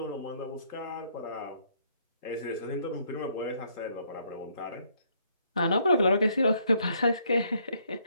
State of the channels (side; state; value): both; inverted; correlation -0.68